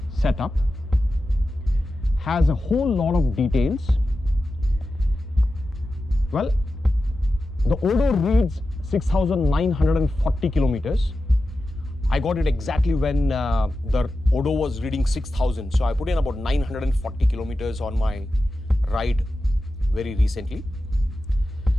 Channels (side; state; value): both; normal; correlation 0.92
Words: set up, has a whole lot of details. Well, the Odo reads 6,940 kilometers. I got it exactly when the Odo was reading 6,000. So I put in about 940 kilometers on my ride very recently.